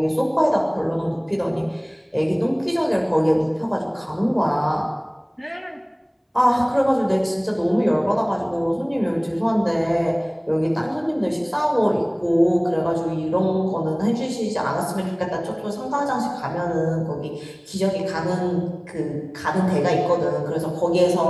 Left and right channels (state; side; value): identical; both; correlation 1.00